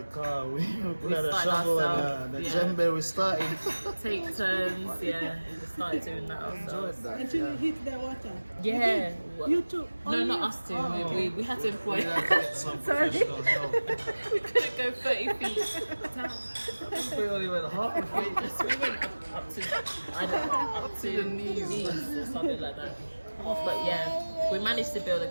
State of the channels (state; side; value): inverted; both; correlation -1.00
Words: car, we had a started shovel ourselves, and the yeah. djembe. We started. Take turns. Yeah. We just started doing that Enjoyed ourselves. that. Until Yeah. you hit the water. Yeah. You too. No, Only not you? us two. Oh. We had to employ. We had to get some Sorry. professional help. We couldn't go 30 feet down. We only went half a feet. We went up to, I don't know, up to the knees. or something like that. But yeah, we managed to build a